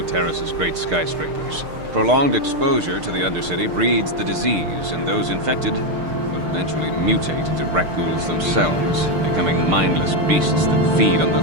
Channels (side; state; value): left; late; 6.6 ms